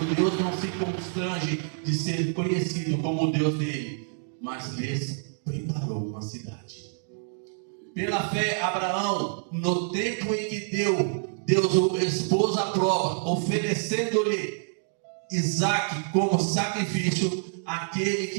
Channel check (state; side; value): silent; left; digital silence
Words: Deus não se constrange de ser conhecido como o Deus dele, mas lhes preparou uma cidade. Pela fé, Abraão, no tempo em que Deus o expôs à prova, oferecendo-lhe Isaque como sacrifício, aquele